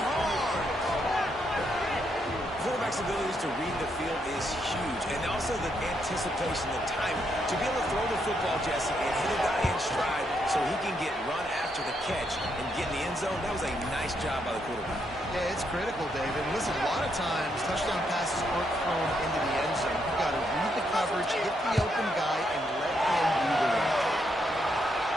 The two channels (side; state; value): both; normal; correlation 0.77